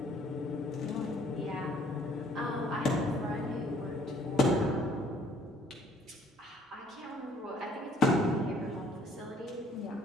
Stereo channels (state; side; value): normal; both; correlation 0.60